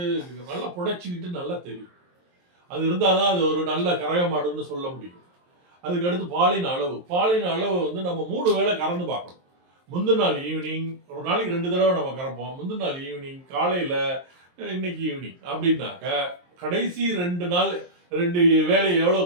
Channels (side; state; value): left; late; 23 ms